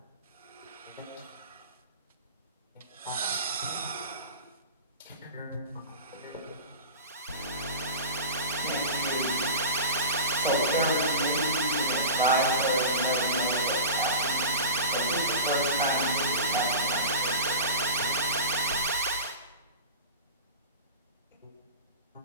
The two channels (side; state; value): both; inverted; correlation -0.32